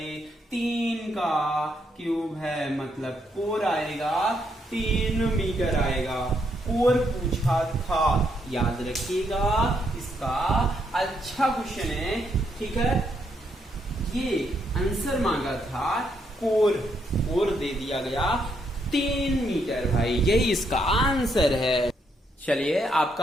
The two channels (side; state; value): both; normal; correlation 0.76